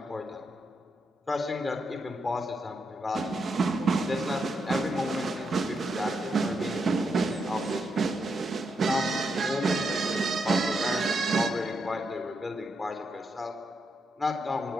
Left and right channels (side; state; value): both; normal; correlation 0.81